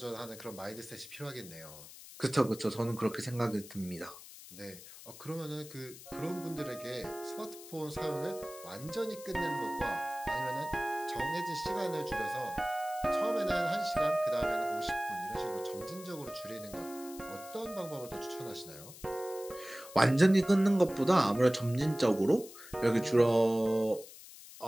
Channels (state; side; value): noise; left; hiss, 16 dB below the sound